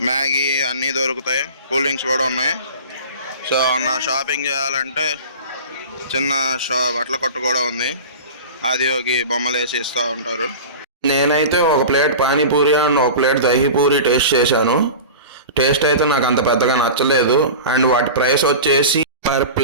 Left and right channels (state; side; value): inverted; both; correlation -0.33